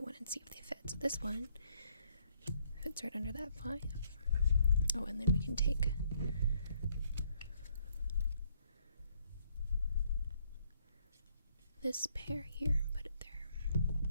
and see if they fit. So this one fits right under that 5. Oh, and then we can take this pair here and put it there.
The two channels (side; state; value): both; inverted; correlation -0.70